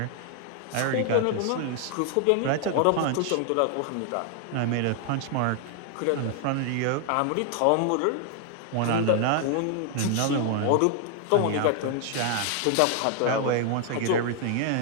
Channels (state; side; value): different; both; correlation 0.00